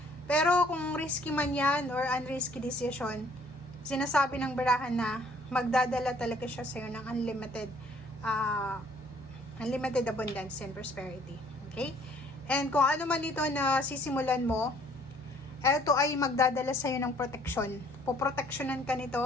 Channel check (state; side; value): normal; both; correlation 0.60